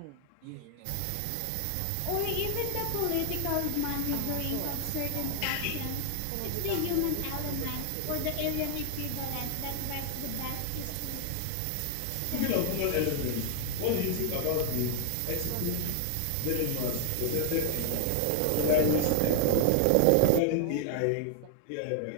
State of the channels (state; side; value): different; both; correlation 0.00